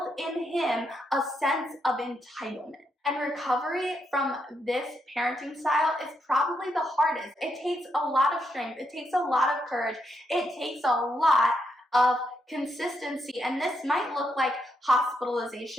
in him a sense of entitlement. And recovery from this parenting style is probably the hardest. It takes a lot of strength. It takes a lot of courage. It takes a lot of consistency, and this might look like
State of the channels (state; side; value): normal; both; correlation 0.80